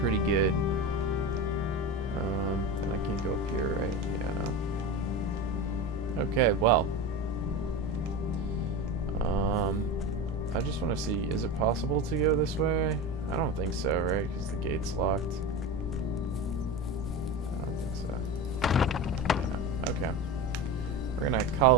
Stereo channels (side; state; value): both; normal; correlation 0.25